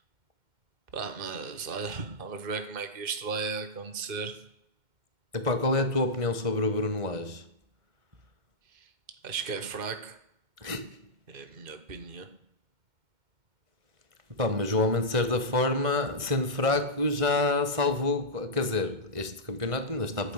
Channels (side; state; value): left; late; 2.1 ms